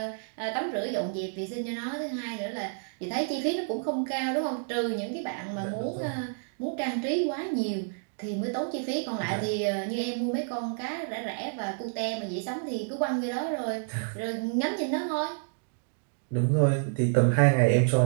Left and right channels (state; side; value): silent; left; digital silence